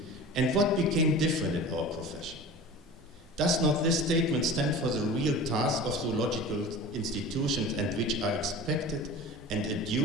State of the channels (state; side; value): normal; both; correlation 0.36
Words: And what became different in our profession? Does not this statement stand for the real task of zoological institutions and which are expected and